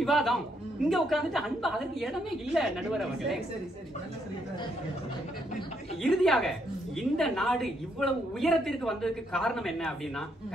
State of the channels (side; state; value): both; normal; correlation 0.74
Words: விவாதம். இங்க உட்கார்ந்துட்டு அன்பா அதற்கு இடமே இல்ல நடுவர் அவர்களே. இறுதியாக இந்த நாடு இவ்வளவு உயரத்திற்கு வந்ததுக்கு காரணம் என்ன அப்படின்னா